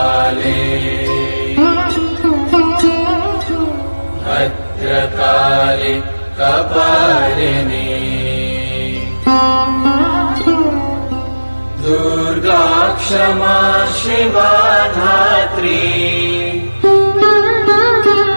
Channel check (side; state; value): both; inverted; correlation -1.00